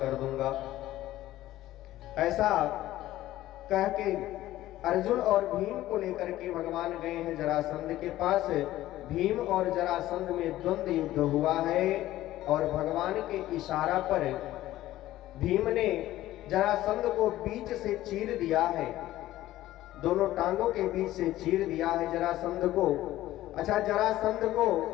दूंगा। ऐसा कह के अर्जुन और भीम को लेकर के भगवान गए हैं जरासंध के पास। भीम और जरासंध में द्वंद्व युद्ध हुआ है और भगवान के इशारा पर भीम ने जरासंध को बीच से चीर दिया है, दोनों टांगों के बीच से चीर दिया है जरासंध को। अच्छा, जरासंध को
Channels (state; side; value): quieter; right; 15.0 dB